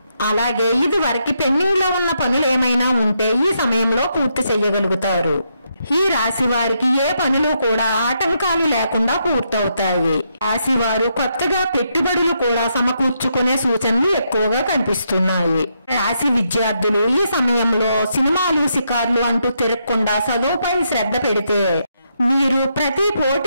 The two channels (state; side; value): inverted; both; correlation -0.79